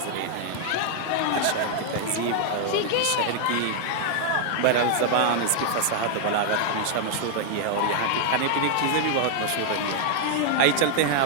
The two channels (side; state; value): both; different; correlation 0.00